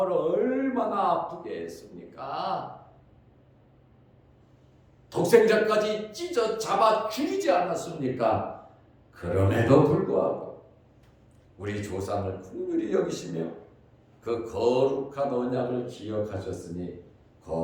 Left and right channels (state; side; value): identical; both; correlation 1.00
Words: 얼마나 아프게 했습니까? 독생자까지 찢어 잡아 죽이지 않았습니까? 그럼에도 불구하고 우리 조상을 긍휼히 여기시며 그 거룩한 언약을 기억하셨으니